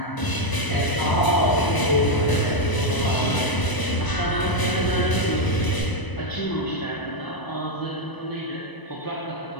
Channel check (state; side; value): late; right; 1.0 ms